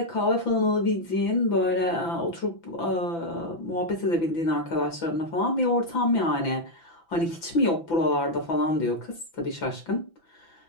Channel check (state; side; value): late; right; 6.0 ms